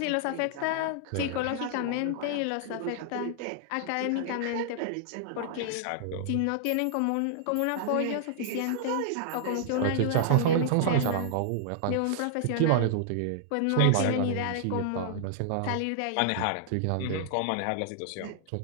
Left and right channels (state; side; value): different; both; correlation -0.01